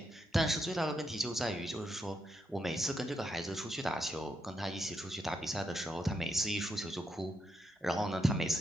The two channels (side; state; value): both; normal; correlation 0.82